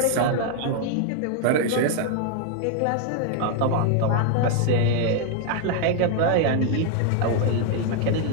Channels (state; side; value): different; both; correlation 0.00